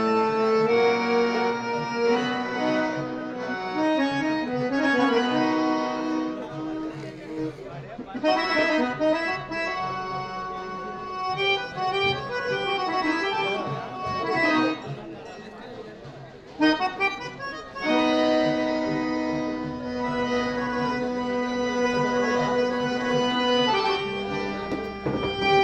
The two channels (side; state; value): both; identical; correlation 1.00